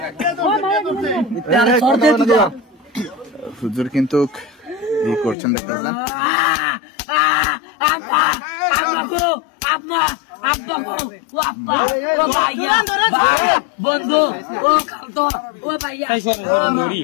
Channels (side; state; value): right; drops out; at 5.4 s